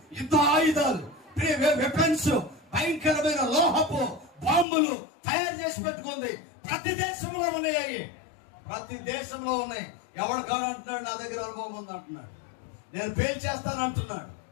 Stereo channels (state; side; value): drops out; right; at 4.7 s